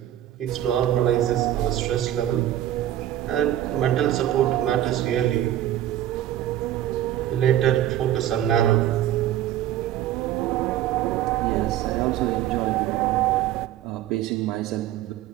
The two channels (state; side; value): quieter; left; 12.4 dB